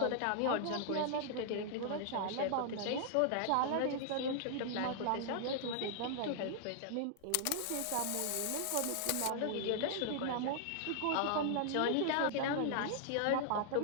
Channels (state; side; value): different; both; correlation -0.01